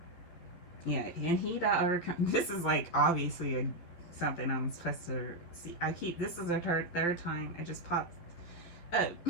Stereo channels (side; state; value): right; late; 12 ms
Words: Yeah, and he that overcome. This is like obviously something I'm supposed to see. This is the third time it just popped up.